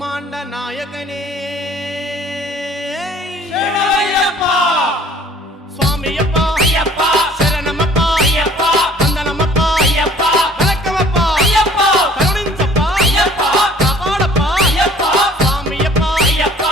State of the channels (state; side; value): normal; both; correlation 0.54